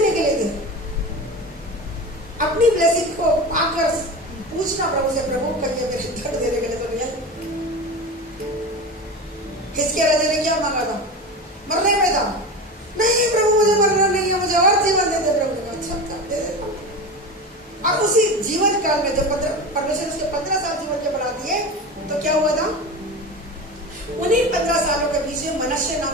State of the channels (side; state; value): both; normal; correlation 0.27